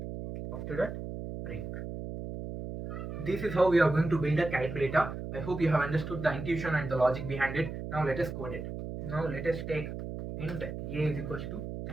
After that, break. This is how we are going to build a calculator. I hope you have understood the intuition and the logic behind it. Now let us code it. Now let us take int a is equals to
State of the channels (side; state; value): right; noise; hum, 7 dB below the sound